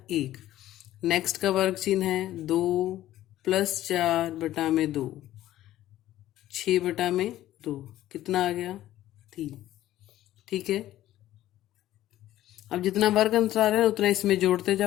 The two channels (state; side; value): quieter; right; 13.9 dB